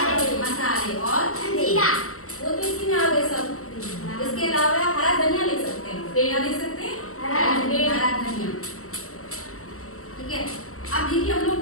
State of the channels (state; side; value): late; right; 0.64 ms